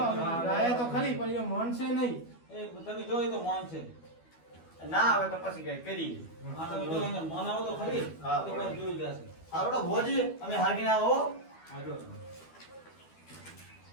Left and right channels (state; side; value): late; right; 12 ms